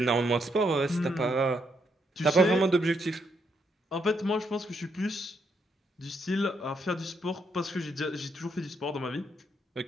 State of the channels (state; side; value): normal; both; correlation 0.76